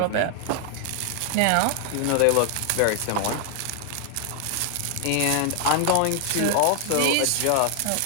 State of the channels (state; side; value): different; both; correlation 0.00